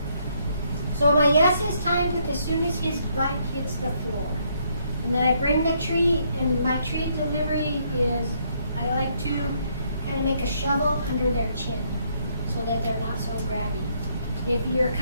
So my yes is timed with as soon as his butt hits the floor. And then I bring the treat, and my treat delivery is, I like to kind of make a shovel under their chin so that they're not so grabby. If you're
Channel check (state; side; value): inverted; both; correlation -0.71